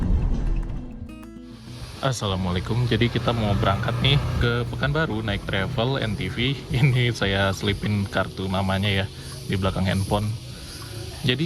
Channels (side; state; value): both; identical; correlation 1.00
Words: Assalamualaikum, jadi kita mau berangkat nih ke Pekanbaru naik travel NTV. Ini saya selipin kartu namanya ya di belakang handphone.